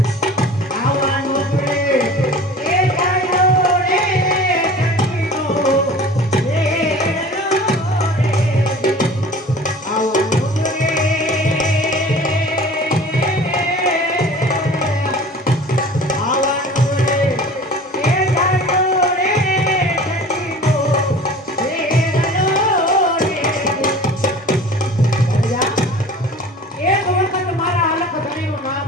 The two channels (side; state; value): both; normal; correlation 0.42